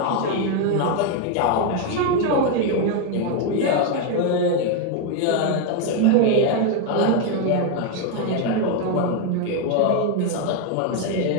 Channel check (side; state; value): both; different; correlation 0.01